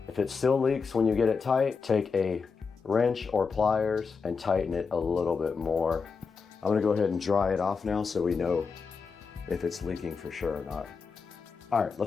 If it still leaks when you get it tight, take a wrench or pliers and tighten it a little bit more. I'm gonna go ahead and dry it off now so we know if it's leaking for sure or not. All right,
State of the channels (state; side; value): quieter; right; 5.2 dB